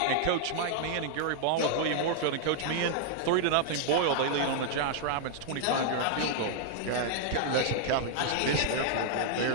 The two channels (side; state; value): both; different; correlation -0.01